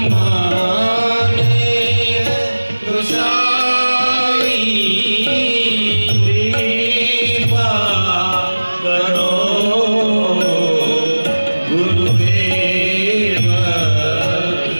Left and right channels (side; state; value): both; inverted; correlation -1.00